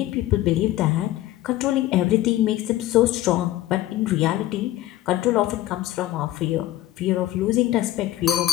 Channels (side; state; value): right; quieter; 15.0 dB